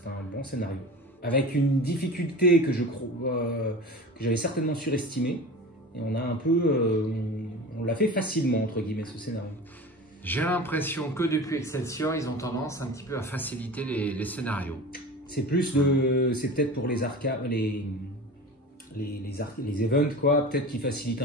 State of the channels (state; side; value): normal; both; correlation 0.34